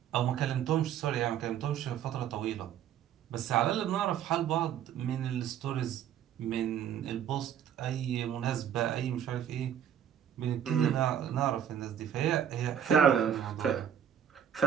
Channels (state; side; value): quieter; left; 9.5 dB